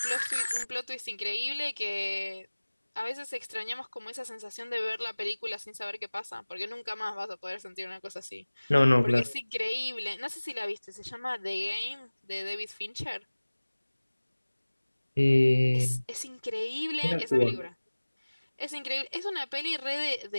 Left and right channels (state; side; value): inverted; both; correlation -1.00